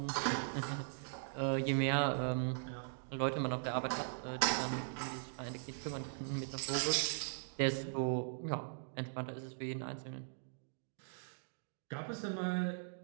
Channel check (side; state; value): left; silent; digital silence